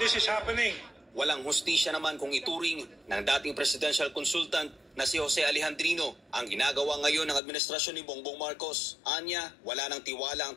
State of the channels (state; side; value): drops out; right; at 7.4 s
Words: is happening. Walang hustisya naman kung ituring ng dating presidential consultant na si Jose Alejandrino ang ginagawa ngayon ng administrasyon ni Bongbong Marcos. Anya, wala nang tiwala ang